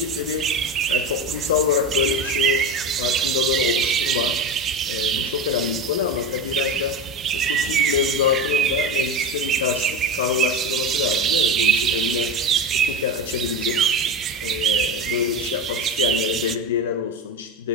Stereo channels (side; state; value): both; normal; correlation 0.23